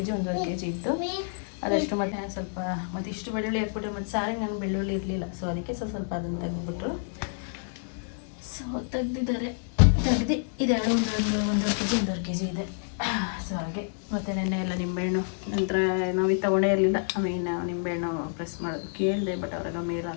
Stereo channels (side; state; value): right; silent; digital silence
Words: ಜಿ ಇತ್ತು. ಅದಷ್ಟು ಮತ್ತೆ ಸ್ವಲ್ಪ ಮತ್ತು ಇಷ್ಟು ಬೆಳ್ಳುಳ್ಳಿ ಹಾಕ್ಬಿಟ್ರೆ ಮತ್ತು ಸಾರಿಗೆ ನನಗೆ ಬೆಳ್ಳುಳ್ಳಿ ಇರಲಿಲ್ಲ. ಸೊ ಅದಕ್ಕೆ ಸ್ವಲ್ಪ ಅದನ್ನು ತೆಗೆದುಬಿಟ್ರು. ಸೊ ತೆಗ್ದು ಇದೆರಡು ಒಂದೂವರೆ ಕೆ ಜಿ ಇದೆ. ಸೊ ಹಾಗೆ ಮತ್ತು ನೆನ್ನೆ ಎಲ್ಲ ನಿಂಬೆಹಣ್ಣು ನಂತರ ನಾವು ಇದು ತೊಗೊಂಡೇ ಇರಲಿಲ್ಲ. ನಿಂಬೆಹಣ್ಣು ಪ್ರೆಸ್ ಮಾಡೋದು ಕೇಳಿದೆ, ಬಟ್ ಅವ್ರಾಗ ಮೇಲ್